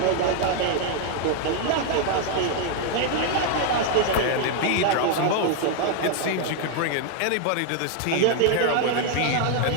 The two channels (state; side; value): different; both; correlation 0.00